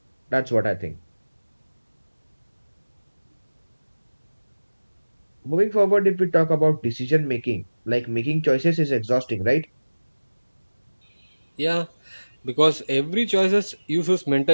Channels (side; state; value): both; inverted; correlation -1.00